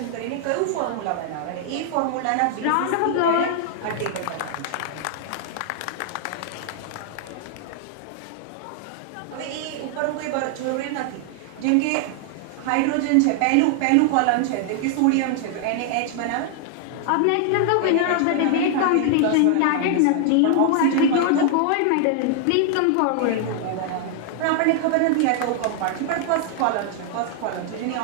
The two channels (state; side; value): different; both; correlation 0.00